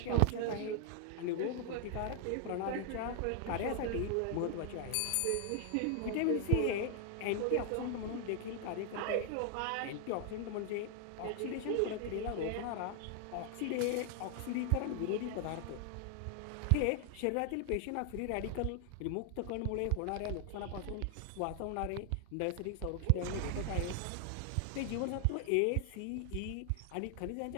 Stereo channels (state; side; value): different; both; correlation 0.00